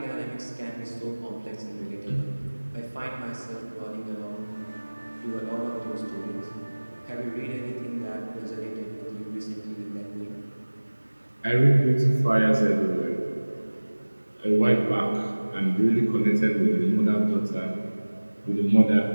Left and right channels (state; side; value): inverted; both; correlation -1.00